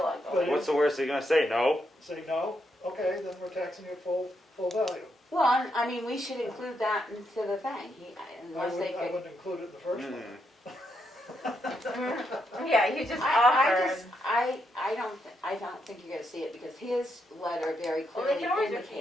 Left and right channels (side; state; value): both; normal; correlation 0.80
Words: but going. What's the worst they're gonna say? No? Say no? Okay, then we're taxing you full value. well, I mean, we should include that into the thing, unless they I could. wouldn't include it in the first one. Yeah, you just I offer. don't think you're gonna see it because his letter very Well, they clearly can always